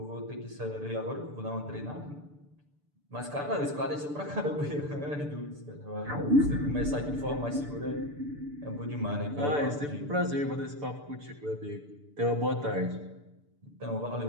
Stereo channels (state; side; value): late; left; 6.8 ms